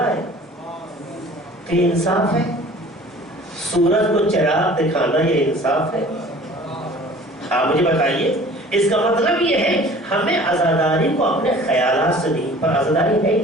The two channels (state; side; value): normal; both; correlation 0.47